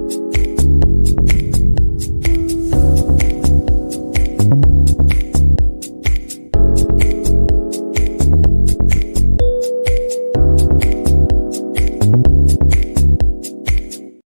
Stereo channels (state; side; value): inverted; both; correlation -1.00